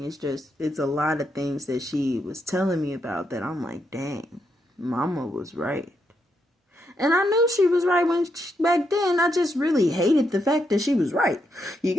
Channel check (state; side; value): normal; both; correlation 0.80